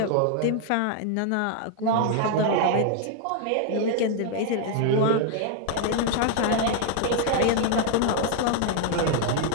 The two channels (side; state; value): both; different; correlation 0.00